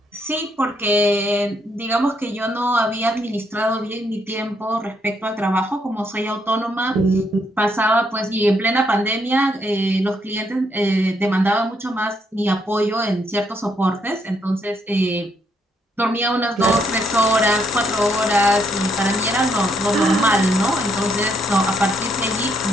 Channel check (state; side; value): normal; both; correlation 0.74